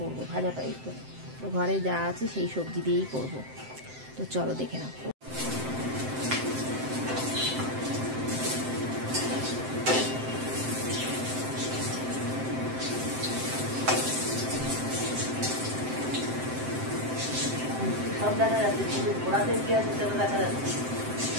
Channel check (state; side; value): late; left; 7.7 ms